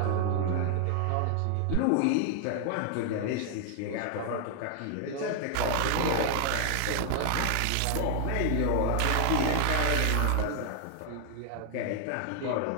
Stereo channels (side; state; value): both; different; correlation 0.00